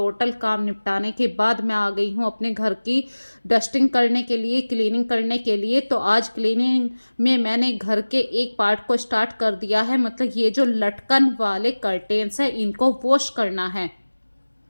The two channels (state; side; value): inverted; both; correlation -1.00